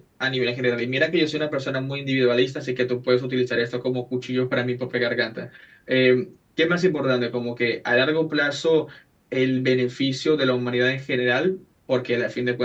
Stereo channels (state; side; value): identical; both; correlation 1.00